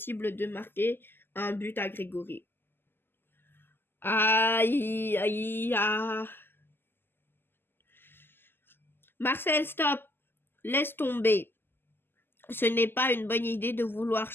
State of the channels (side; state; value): right; late; 0.10 ms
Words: de marquer un but à Grégory. Aïe, aïe, aïe. Marcel, stop. Laisse tomber. Ce n'est pas une bonne idée de vouloir